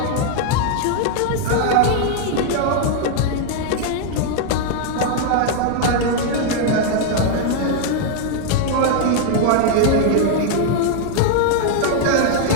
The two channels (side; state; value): both; different; correlation 0.00